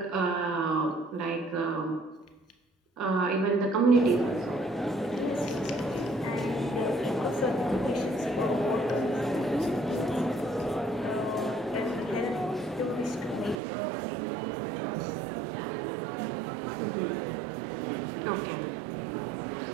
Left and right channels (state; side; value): drops out; left; at 13.6 s